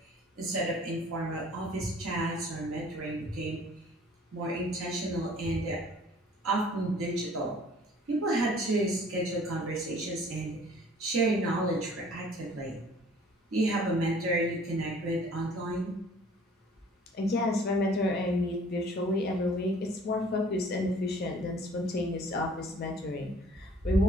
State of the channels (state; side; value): normal; both; correlation 0.53